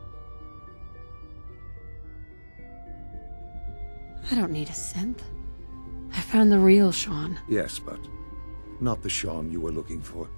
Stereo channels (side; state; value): both; inverted; correlation -1.00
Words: I don't need a synth. I found the real Sean. Yes, but not the Sean you were looking for.